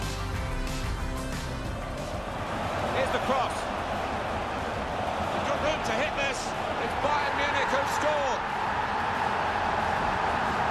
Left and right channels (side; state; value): both; identical; correlation 1.00